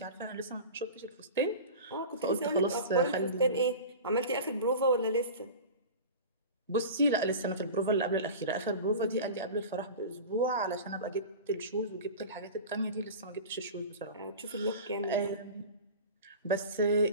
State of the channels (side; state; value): both; inverted; correlation -0.33